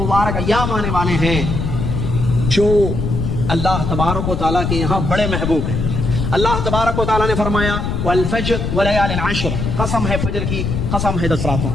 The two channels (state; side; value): noise; left; rumble, 2 dB below the sound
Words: ایام آنے والے ہیں جو اللہ تبارک و تعالیٰ کے یہاں بڑے محبوب ہیں۔ اللہ تبارک و تعالیٰ نے فرمایا والفجر ولیال عشر، قسم ہے فجر کی، قسم ہے 10 راتوں